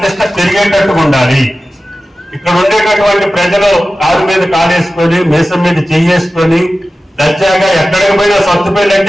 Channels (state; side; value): normal; both; correlation 0.95